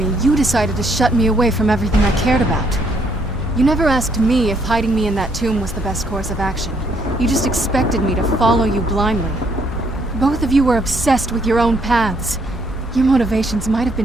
you decided to shut me away from everything I cared about. You never asked me if hiding me in that tomb was the best course of action. You just expected me to follow you blindly. Both of you were obsessed with your own paths. Your motivations might have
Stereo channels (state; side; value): noise; right; hum, 15 dB below the sound